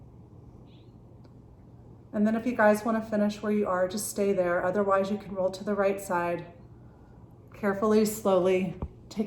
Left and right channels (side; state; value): both; identical; correlation 1.00